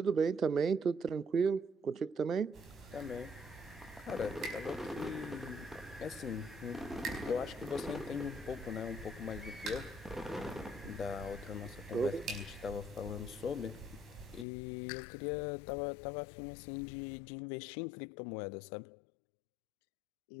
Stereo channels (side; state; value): right; drops out; at 14.5 s